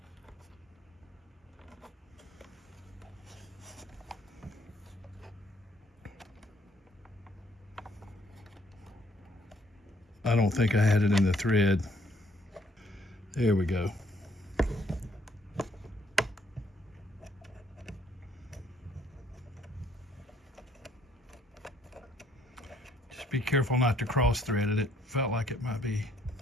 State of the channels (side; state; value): both; normal; correlation 0.66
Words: I don't think I had it in the thread. There we go. Just be careful not to cross thread it. It felt like it might be